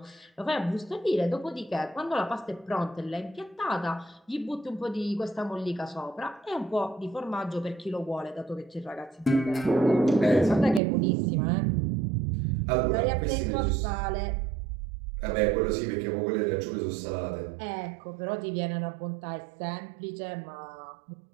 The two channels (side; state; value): left; drops out; at 10.8 s